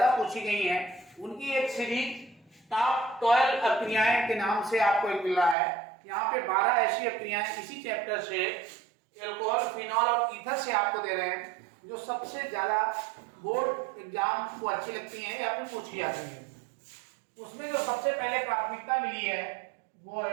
पूछी गई हैं उनकी एक सीरीज टॉप 12 अभिक्रियाएं के नाम से आपको एक मिल रहा है। यहाँ पे 12 ऐसी अभिक्रियाएं इसी चैप्टर से एल्कोहल, फिनॉल और ईथर से आपको दे रहे हैं जो सबसे ज्यादा बोर्ड एग्जाम को अच्छी लगती हैं या फिर पूछी जाती है। उसमें जो सबसे पहले प्राथमिकता मिली है वो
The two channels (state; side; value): drops out; left; at 5.6 s